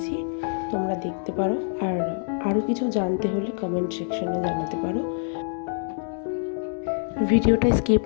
তোমরা দেখতে পারো। আর আরও কিছু জানতে হলে কমেন্ট সেকশনে জানাতে পারো। ভিডিওটা স্কিপ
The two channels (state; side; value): silent; right; digital silence